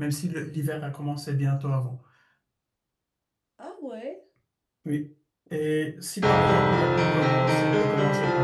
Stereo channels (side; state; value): both; identical; correlation 1.00